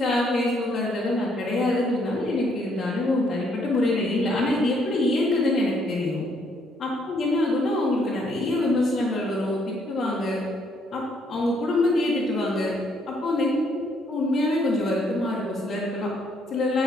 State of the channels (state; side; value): normal; both; correlation 0.70